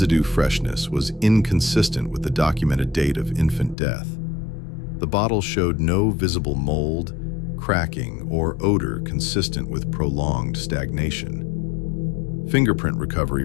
freshness was inconsistent with the documented date of infant death. The bottle showed no visible mold, cracking, or odor consistent with prolonged stagnation. Fingerprint recovery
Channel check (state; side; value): drops out; right; at 3.8 s